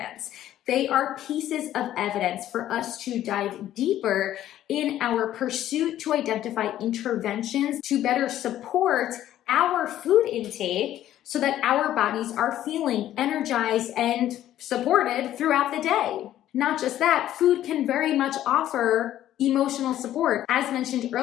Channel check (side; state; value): right; quieter; 12.5 dB